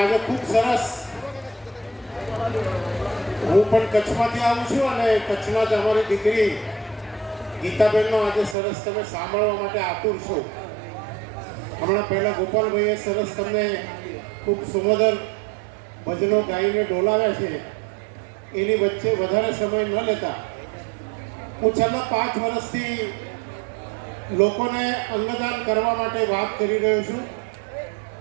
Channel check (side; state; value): left; drops out; at 8.6 s